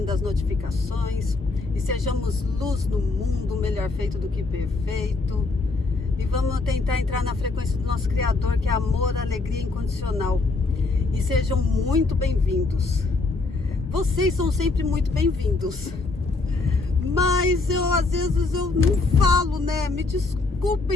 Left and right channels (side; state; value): right; quieter; 3.6 dB